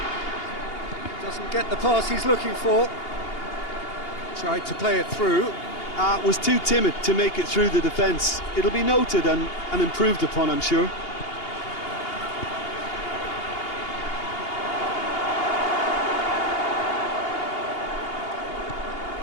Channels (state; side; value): late; right; 2.8 ms